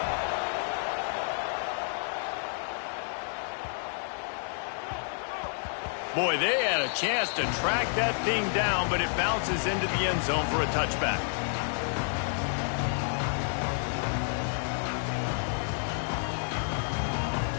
Boy, they had a chance to track that thing down, but it bounces into the end zone for a touchback.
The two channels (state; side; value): silent; right; digital silence